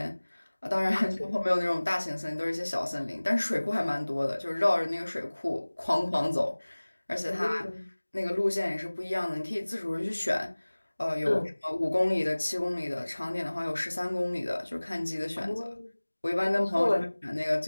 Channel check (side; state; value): both; inverted; correlation -1.00